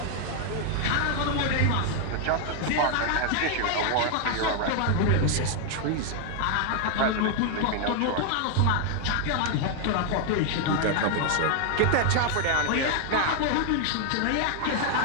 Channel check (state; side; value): different; both; correlation 0.00